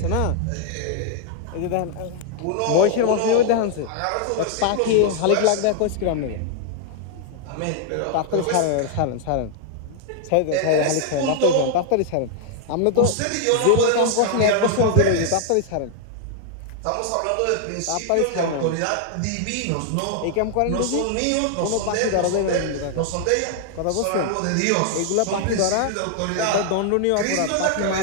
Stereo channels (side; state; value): both; different; correlation 0.00